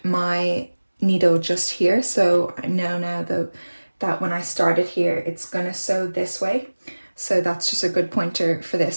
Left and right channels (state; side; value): inverted; both; correlation -1.00